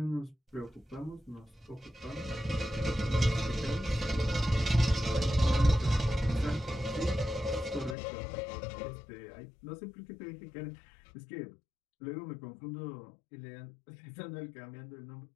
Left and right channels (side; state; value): right; drops out; at 8.0 s